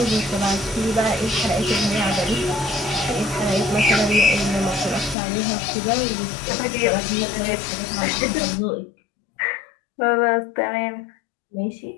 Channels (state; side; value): drops out; right; at 5.2 s